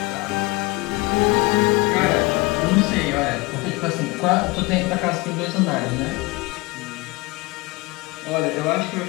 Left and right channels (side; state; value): right; quieter; 24.1 dB